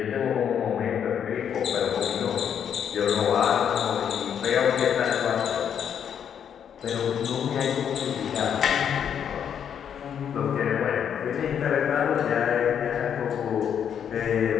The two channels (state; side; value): quieter; right; 8.4 dB